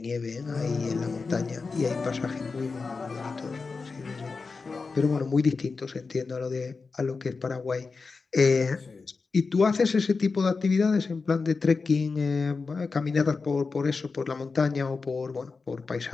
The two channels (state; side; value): quieter; right; 4.4 dB